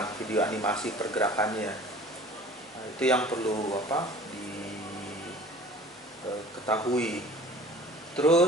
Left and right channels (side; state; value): both; normal; correlation 0.46